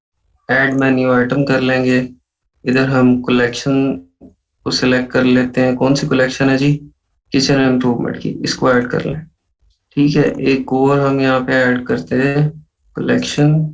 ऐड मेन्यू आइटम कर लेंगे। इधर हम कलेक्शन को सिलेक्ट कर लेते हैं। कौन सी कलेक्शन है जी? किचन इम्प्रूवमेंट की, इसको ऐड कर लें। ठीक है, एक और हम यहाँ पे ऐड करते हैं कलेक्शन।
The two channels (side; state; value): both; identical; correlation 1.00